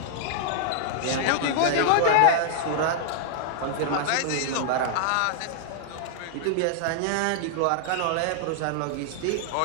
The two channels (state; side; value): different; both; correlation -0.01